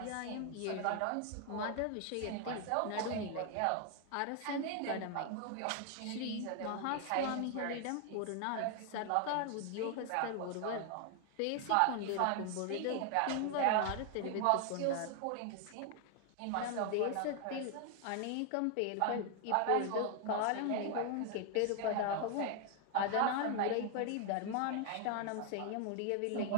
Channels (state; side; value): different; both; correlation 0.00